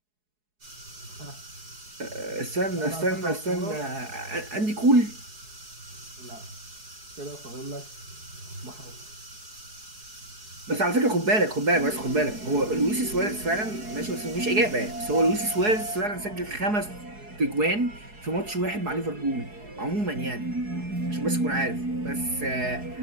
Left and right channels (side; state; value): left; late; 4.7 ms